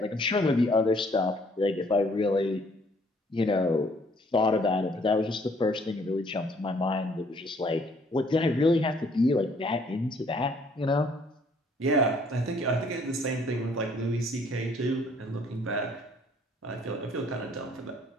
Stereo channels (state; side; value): normal; both; correlation 0.62